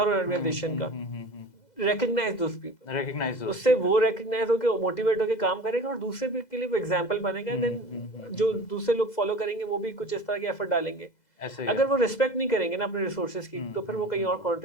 हर ऑर्गेनाइजेशन का, recognize those people, उससे वो recognize होके मोटिवेट होके काम करेगा और दूसरे भी के लिए वो एग्जांपल बनेगा। देन जो दूसरे लोग फॉलो करेंगे वो भी कुछ इस तरह के एफर्ट डालेंगे। अगर वो रिस्पेक्ट नहीं करेंगे ना अपने रिसोर्सेज की तो फिर वो कहीं और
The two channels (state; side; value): late; right; 2.0 ms